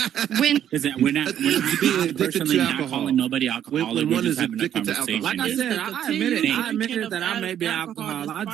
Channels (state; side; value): quieter; left; 10.2 dB